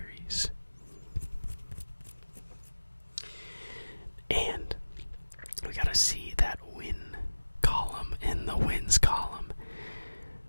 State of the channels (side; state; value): both; inverted; correlation -1.00